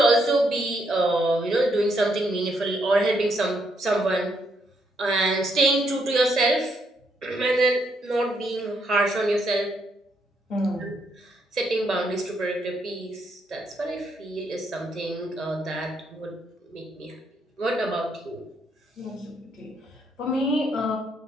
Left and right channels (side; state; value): both; normal; correlation 0.75